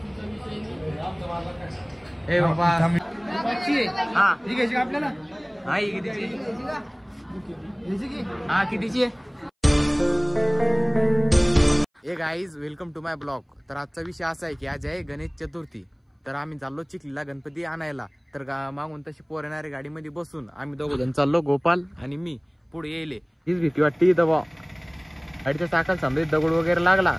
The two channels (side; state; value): both; identical; correlation 1.00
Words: ए बाबा हा ही घ्यायची आपल्याला. हा ही कितीची? हा कितीची? ए guys, welcome to my blog. तर आजचा विषय असा आहे की आज आहे गणेश चतुर्थी. तर आम्ही चाललो चिखलीला गणपती आणायला. तर मागून तशी पोर येणारी गाडीमध्ये बसून आम्ही दोघं जण चाललो, गोपाल आणि मी. पुढे येईल हीच भीती वाटते इथं बा, गाडीच्या चाकाला समजा दगड वगैरे लागला